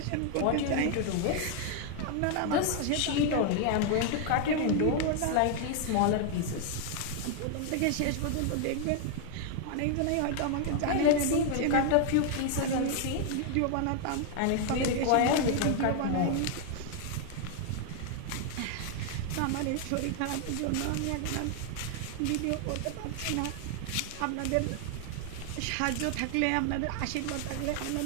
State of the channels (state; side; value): different; both; correlation 0.00